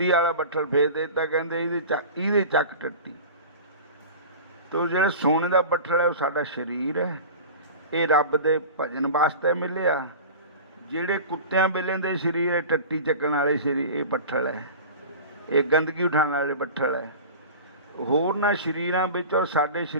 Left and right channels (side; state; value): both; inverted; correlation -0.35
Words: ਵਾਲਾ ਬੱਠਲ ਫੇਰ ਦੇ ਦਿੱਤਾ। ਕਹਿੰਦੇ ਇਹਦੇ ਚੱਕ ਟੱਟੀ। ਤੋ ਜਿਹੜਾ ਸੋਨੇ ਦਾ ਬੱਠਲ ਹੈ ਉਹ ਸਾਡਾ ਸਰੀਰ ਹੈ, ਇਹ ਰੱਬ ਦੇ ਭਜਨ ਵਾਸਤੇ ਮਿਲਿਆ। ਜਿਹੜੇ ਕੁੱਤਿਆਂ ਬਿੱਲਿਆਂ ਦੇ ਸਰੀਰ ਹੈ, ਟੱਟੀ ਚੱਕਣ ਵਾਲੇ ਸਰੀਰ, ਇਹ ਬੱਠਲ ਹੈ, ਇਹ ਗੰਦਗੀ ਉਠਾਉਣ ਵਾਲੇ ਬੱਠਲ ਹੈ। ਹੋਰਨਾਂ ਸਰੀਰਾਂ ਵਿੱਚ ਔਰ ਸਾਡੇ